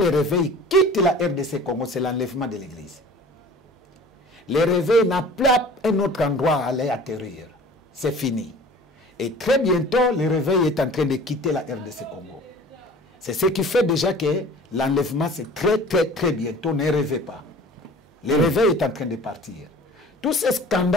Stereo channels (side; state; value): both; normal; correlation 0.45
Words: réveil quitte la RDC Congo, c'est l'enlèvement de l'église. Le réveil n'a pas un autre endroit à aller atterrir. C'est fini. Et très bientôt, le réveil est en train de quitter la RDC Congo. C'est ce qui fait déjà que l'enlèvement, c'est très bientôt. Ne rêvez pas. Le réveil est en train de partir. Tous ces